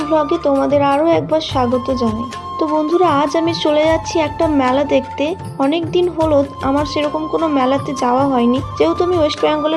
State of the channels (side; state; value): both; identical; correlation 1.00